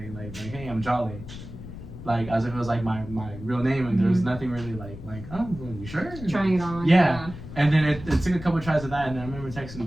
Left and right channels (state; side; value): noise; left; rumble, 12 dB below the sound